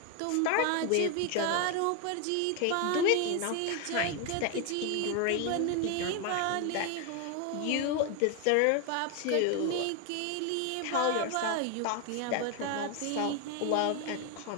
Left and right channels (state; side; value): different; both; correlation 0.01